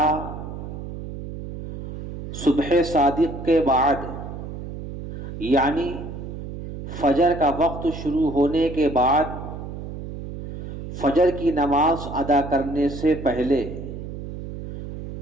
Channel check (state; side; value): noise; right; hum, 9 dB below the sound